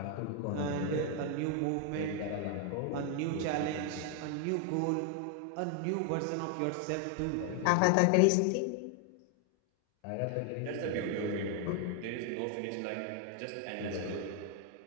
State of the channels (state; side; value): different; both; correlation 0.00